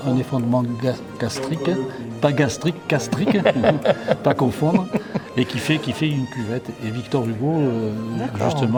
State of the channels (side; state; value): both; identical; correlation 1.00